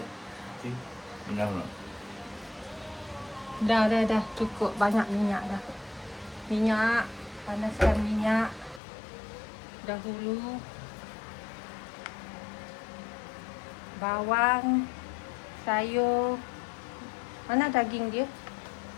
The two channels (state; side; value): drops out; right; at 8.8 s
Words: Dah cukup banyak minyak dah. Minyak, panaskan minyak dahulu. Bawang, sayur. Mana daging dia?